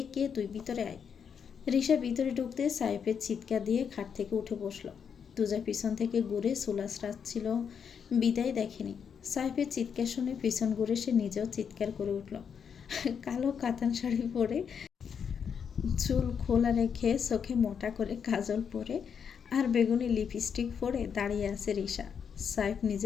কে তুই? ভিতরে আয়। রিসা ভিতরে ঢুকতে সাইফের চিৎকার দিয়ে খাট থেকে উঠে বসলো। তুজা পিছন থেকে ঘুরে সুলাস রাখছিল, বিদায় দেখেনি। সাইফের চিৎকার শুনে পিছন ঘুরে সে নিজেও চিৎকার করে উঠল। কালো কাতান শাড়ি পরে, চুল খোলা রেখে, চোখে মোটা করে কাজল পরে আর বেগুনি লিপস্টিক পরে দাঁড়িয়ে আছে রিসা। সাইফ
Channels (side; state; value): right; quieter; 7.1 dB